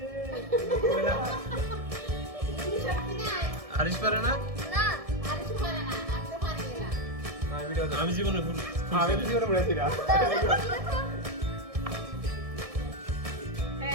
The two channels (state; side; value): late; left; 1.6 ms